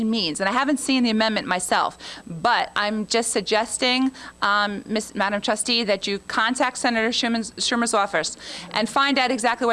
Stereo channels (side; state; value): both; identical; correlation 1.00